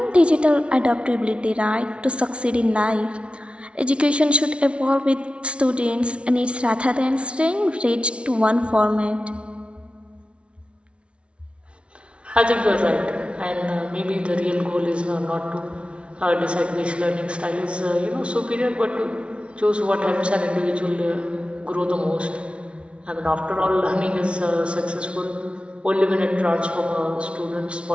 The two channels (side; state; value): left; late; 0.059 ms